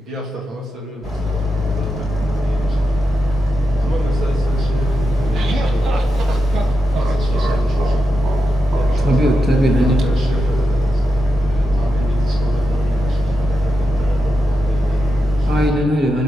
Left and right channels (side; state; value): both; normal; correlation 0.88